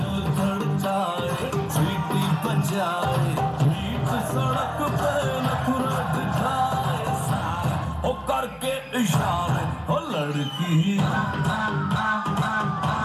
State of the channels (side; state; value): both; identical; correlation 1.00